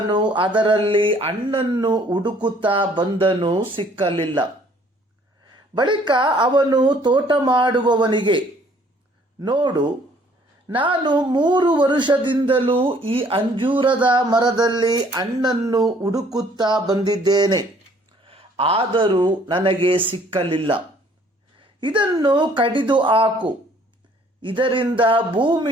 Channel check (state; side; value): normal; both; correlation 0.59